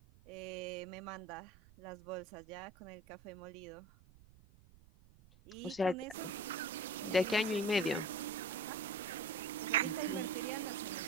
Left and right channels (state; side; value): noise; right; rumble, 24 dB below the sound